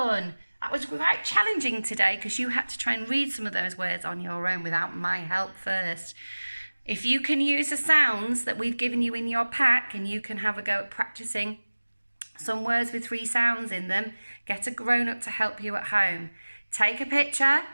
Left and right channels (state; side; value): inverted; both; correlation -1.00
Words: That was quite challenging today because you had to try and read some of those words on your own without my help first. If you can use the sounds that we've given you in your pack and you can have a go at practicing some words with 3 sounds in them, get a grown-up to help you at home. Take a picture